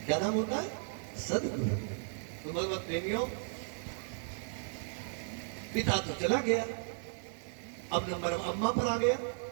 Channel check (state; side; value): silent; left; 54 dB below the other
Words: क्या नाम होता है? सदगुरु। तो भगवत प्रेमियों, पिता तो चला गया, अब नंबर अम्मा पर आ गया।